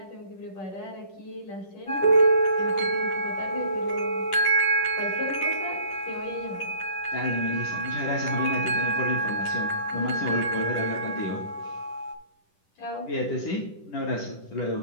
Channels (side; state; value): right; late; 10 ms